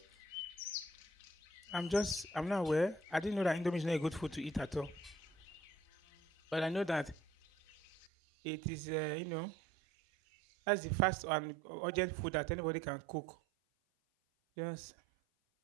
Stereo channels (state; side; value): drops out; left; at 8.1 s